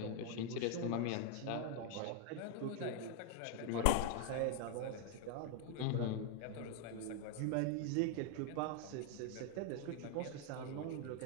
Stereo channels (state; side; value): different; both; correlation 0.00